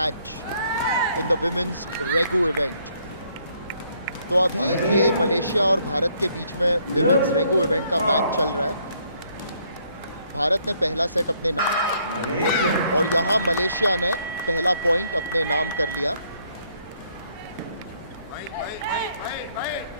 in the women's Regu event. तो अभी ये Malaysia और भारत के बीच में women's रेगो event का match चल रहा है. भारत ने पहला सेट अपने नाम और यहाँ मलेशिया ने पहला पॉइंट अपने नाम कर लिया.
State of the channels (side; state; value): both; inverted; correlation -0.68